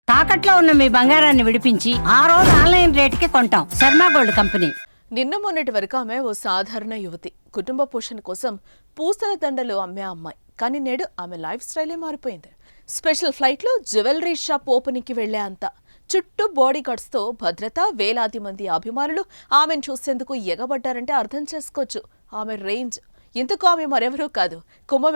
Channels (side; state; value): both; inverted; correlation -1.00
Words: తాకట్లో ఉన్న మీ బంగారాన్ని విడిపించి ఆ రోజు ఆన్లైన్ రేటుకి కొంటాం. Sharma gold company. నిన్న మొన్నటి వరకు ఆమె ఓ సాధారణ యువతి. కుటుంబ పోషణ కోసం పూసల దండలు అమ్మే అమ్మాయి. కానీ నేడు ఆమె లైఫ్ స్టైలే మారిపోయింది. స్పెషల్ ఫ్లైట్లో జ్యువెలరీ షాప్ ఓపెనింగ్కి వెళ్లే అంత చుట్టూ బాడీ గార్డ్స్తో భద్రత, వేలాది మంది అభిమానులు ఆమెను చూసేందుకు ఎగబడ్డారంటే అర్థం చేసుకోవచ్చు ఆమె రేంజ్. ఇంతకు ఆమె మరెవరూ కాదు,